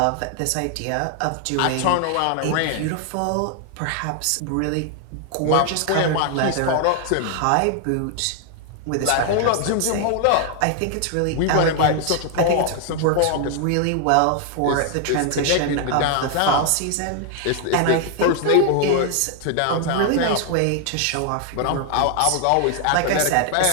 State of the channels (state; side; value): different; both; correlation 0.00